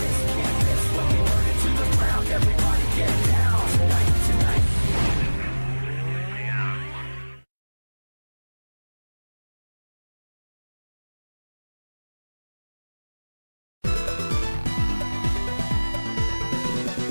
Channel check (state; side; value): inverted; both; correlation -1.00